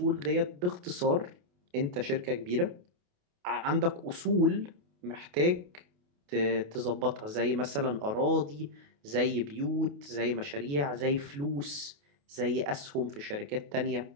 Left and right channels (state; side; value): late; left; 28 ms